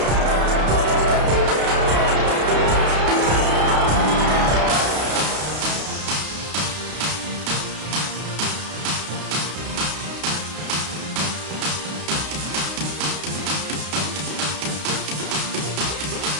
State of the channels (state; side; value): late; left; 33 ms